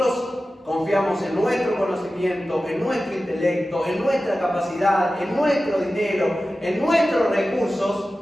confiamos en nuestro conocimiento, en nuestro intelecto, en nuestra capacidad, en nuestro dinero, en nuestros recursos,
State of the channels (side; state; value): both; normal; correlation 0.94